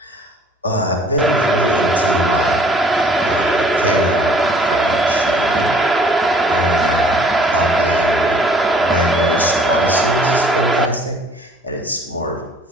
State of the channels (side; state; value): both; normal; correlation 0.56